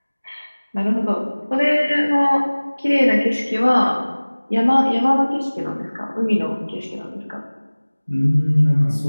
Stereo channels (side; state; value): both; inverted; correlation -1.00